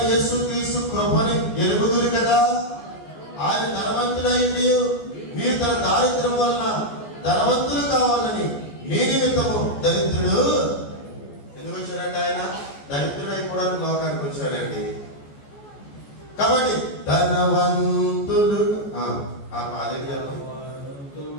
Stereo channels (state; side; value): late; right; 14 ms